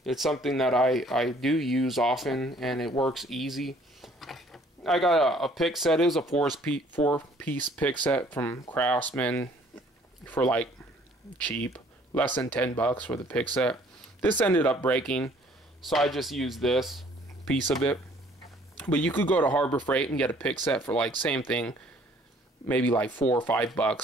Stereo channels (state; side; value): normal; both; correlation 0.58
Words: it's something that I do use often, and it works easy. I got a pick set. It was a four-piece pick set from Craftsman for like cheap, less than $10 for the pick set. This ended up breaking, so I just use this piece of it. But you could go to Harbor Freight and get a pick set for like same thing, maybe like $4 or